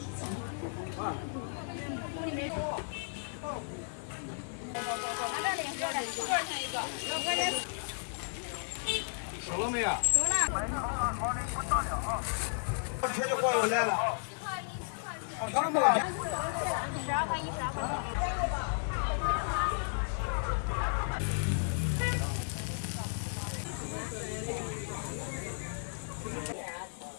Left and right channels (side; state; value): right; silent; digital silence